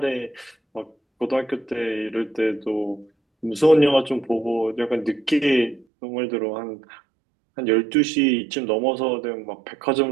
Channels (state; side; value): drops out; left; at 5.9 s